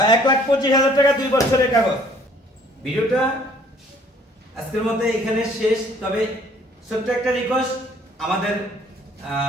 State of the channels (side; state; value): both; normal; correlation 0.58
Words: 1,25,000 টাকা, 2 বছরের কাগজ। ভিডিওটা আজকের মধ্যে এখানে শেষ। তবে ছোট্ট একটা রিকোয়েস্ট, আমাদের